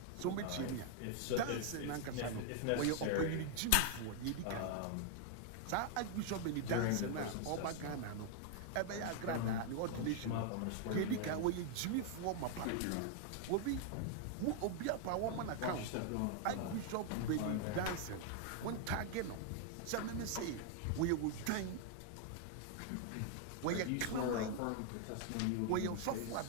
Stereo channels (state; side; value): different; both; correlation 0.00